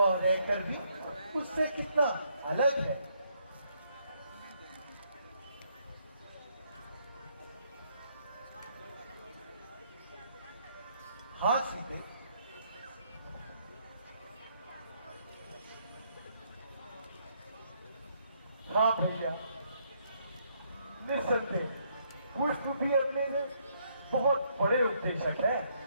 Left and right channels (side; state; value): both; inverted; correlation -0.71